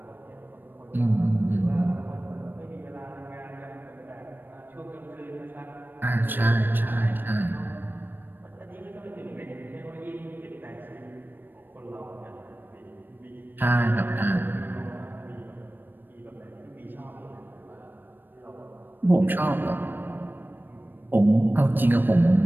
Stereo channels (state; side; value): late; left; 0.093 ms